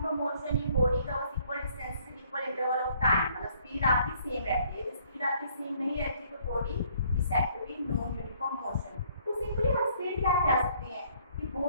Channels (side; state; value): both; inverted; correlation -0.62